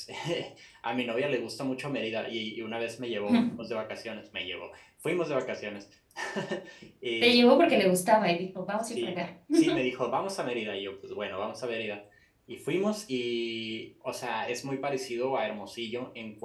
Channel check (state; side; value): identical; both; correlation 1.00